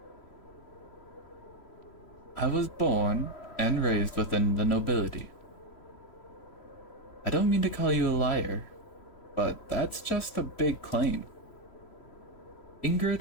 I was born and raised within the nobility. I don't mean to call you a liar, but that's just a big claim.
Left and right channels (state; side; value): late; right; 3.1 ms